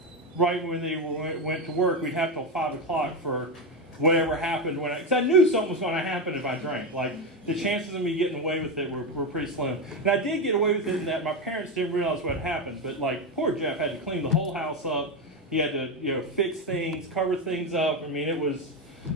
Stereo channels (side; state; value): both; normal; correlation 0.12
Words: right when they went to work, we'd have till 5 o'clock for whatever happened because I knew something was going to happen if I drank. Like, the chances of me getting away with it were pretty slim. And I did get away with it in that my parents didn't realize what happened. But like, poor Jeff had to clean the whole house up. He had to fix things, cover things up. I mean, it was